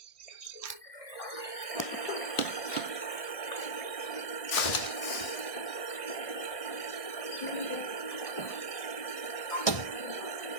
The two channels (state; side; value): late; right; 1.6 ms